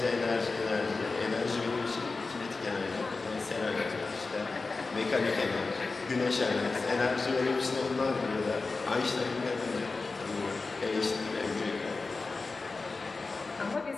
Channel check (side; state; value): right; quieter; 3.9 dB